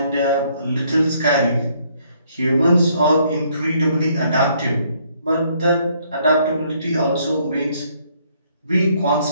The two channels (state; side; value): inverted; both; correlation -0.67